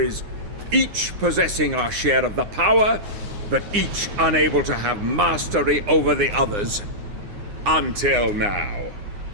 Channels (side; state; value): left; late; 9.7 ms